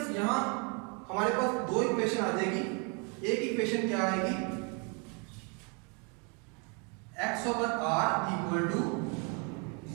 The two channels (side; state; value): left; quieter; 34.7 dB